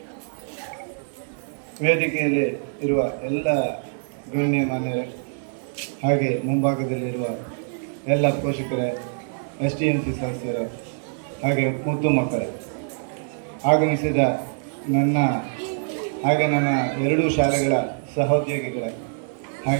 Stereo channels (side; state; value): left; silent; digital silence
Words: ವೇದಿಕೆಯಲ್ಲಿ ಇರುವ ಎಲ್ಲ ಗಣ್ಯಮಾನ್ಯರೇ, ಹಾಗೆ ಮುಂಭಾಗದಲ್ಲಿರುವ ಎಲ್ಲ ಪೋಷಕರೇ, STMC ಸದಸ್ಯರೇ, ಹಾಗೆ ಮುದ್ದು ಮಕ್ಕಳೇ, ಆಗಮಿಸಿದ ನನ್ನ ಎರಡೂ ಶಾಲೆಗಳ ಸಹೋದ್ಯೋಗಿಗಳೇ,